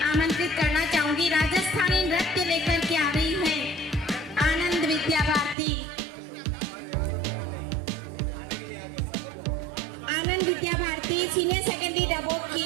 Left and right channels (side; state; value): left; drops out; at 5.6 s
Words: आमंत्रित करना चाहूंगी। राजस्थानी नृत्य लेकर के आ रही है आनंद विद्या भारती। आनंद विद्या भारती सीनियर सेकेंडरी डबोक